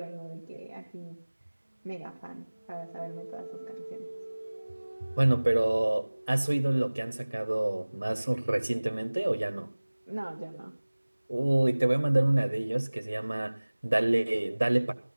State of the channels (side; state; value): both; inverted; correlation -1.00